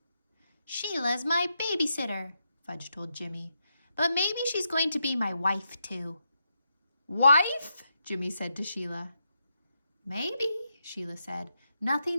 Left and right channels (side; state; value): both; inverted; correlation -0.84